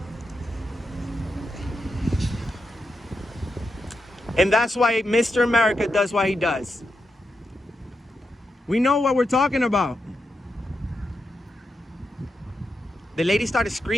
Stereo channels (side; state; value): both; normal; correlation 0.87